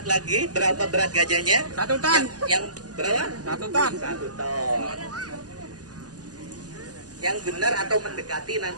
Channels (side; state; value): left; late; 0.68 ms